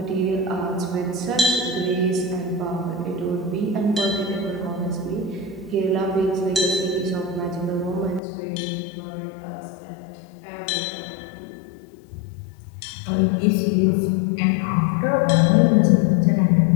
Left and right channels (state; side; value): drops out; right; at 8.2 s